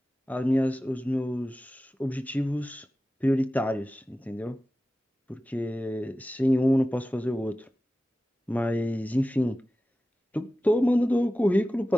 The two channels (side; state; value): both; normal; correlation 0.95